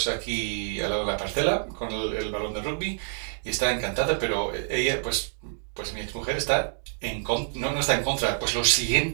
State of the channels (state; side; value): silent; left; digital silence